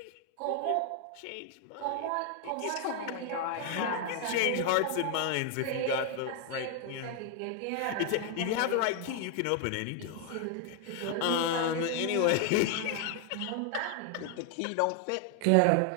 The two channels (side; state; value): both; different; correlation 0.00